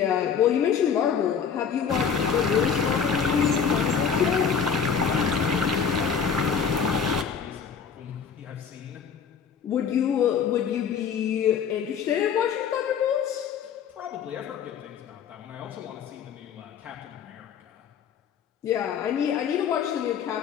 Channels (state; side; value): quieter; right; 6.9 dB